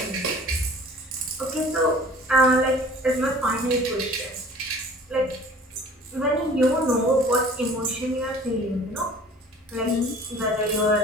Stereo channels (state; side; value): normal; both; correlation 0.48